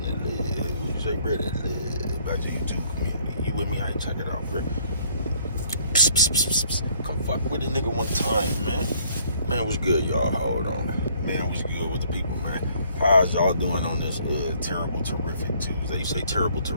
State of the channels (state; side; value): inverted; both; correlation -0.61